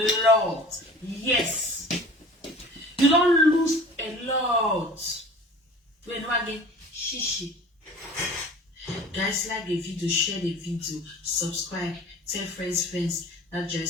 lot. Yes. You don't lose a lot. When again, shishi. Guys, like the video, share the video, subscribe, tell friends that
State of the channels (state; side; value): normal; both; correlation 0.43